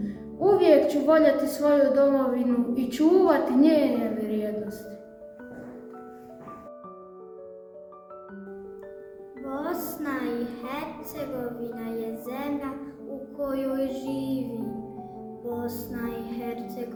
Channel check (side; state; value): both; identical; correlation 1.00